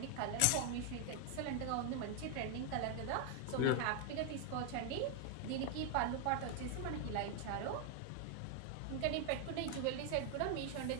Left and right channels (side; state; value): both; different; correlation 0.00